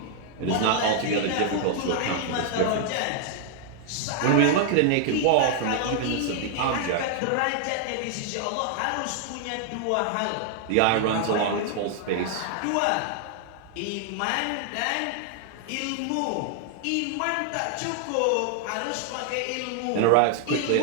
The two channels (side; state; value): both; different; correlation 0.00